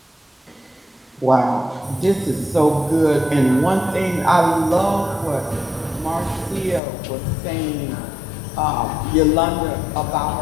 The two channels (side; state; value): right; drops out; at 6.8 s